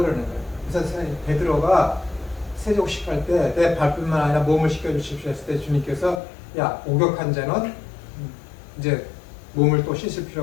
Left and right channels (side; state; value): right; drops out; at 6.2 s